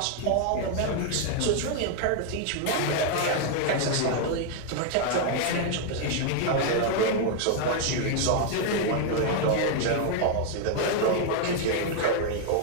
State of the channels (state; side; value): different; both; correlation 0.00